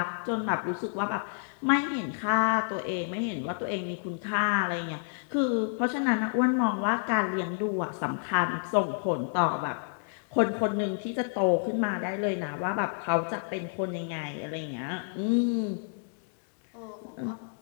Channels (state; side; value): silent; right; 58 dB below the other